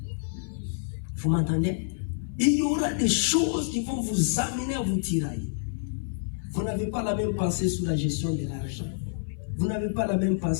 Vous m'entendez? Il y aura des choses qui vont vous amener à vous tirailler. Vous n'avez pas la même pensée sur la gestion de l'argent. Vous n'avez pas la même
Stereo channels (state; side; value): silent; right; 55 dB below the other